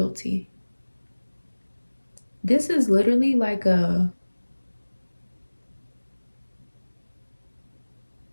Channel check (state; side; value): inverted; both; correlation -1.00